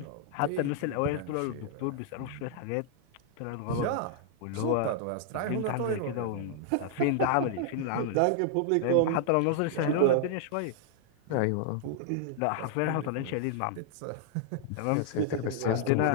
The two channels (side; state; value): both; different; correlation 0.00